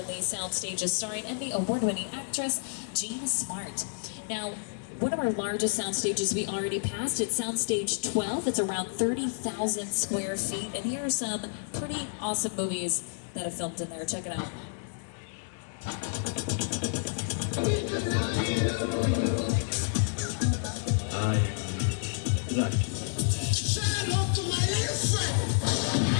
the sound stages starring Emmy award-winning actress Jean Smart. Now, one of our largest sound stages we already passed, it's Soundstage 12. It's around 30,000 square feet, and here are some pretty awesome movies that have filmed in there. Check it out.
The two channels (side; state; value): right; silent; digital silence